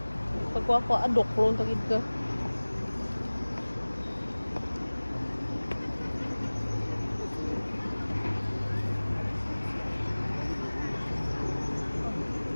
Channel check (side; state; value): both; inverted; correlation -1.00